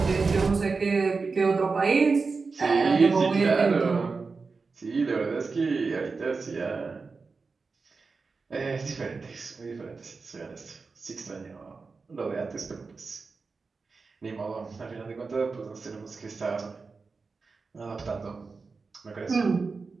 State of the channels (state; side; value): quieter; left; 4.4 dB